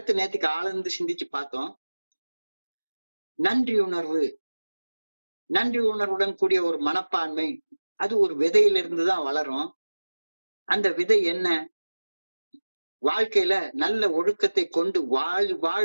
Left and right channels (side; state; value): both; inverted; correlation -1.00